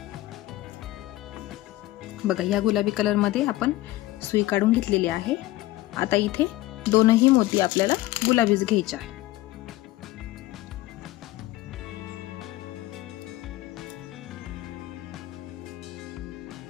बघा या गुलाबी कलर मध्ये आपण सुई काढून घेतलेली आहे. आता इथे दोनही मोती आपल्याला गुलाबीच घ्यायचे आहे.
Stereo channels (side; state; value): right; quieter; 17.1 dB